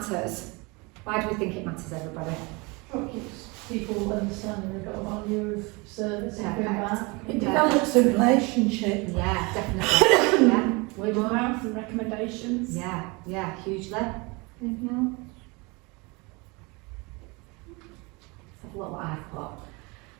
Why do we think it matters, everybody? It keeps people understanding they've got a value of service and going back. It develops a relationship. Yeah, definitely. Yeah. Word of mouth and recommendations. Yeah, hugely. Anything else? Let's have a look what I've got.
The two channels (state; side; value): quieter; left; 27.2 dB